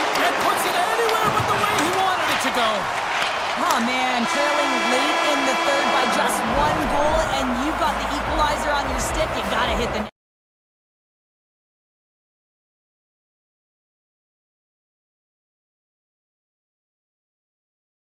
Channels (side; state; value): both; identical; correlation 1.00